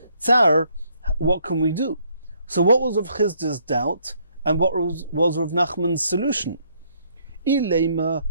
tsar, what can we do? So what was Rav Chizda's doubt, and what was Rav Nachman's solution? Ilema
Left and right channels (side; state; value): both; inverted; correlation -0.69